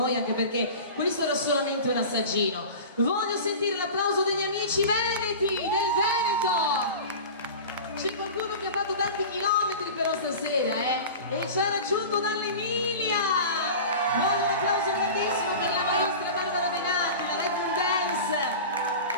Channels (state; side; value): inverted; both; correlation -0.34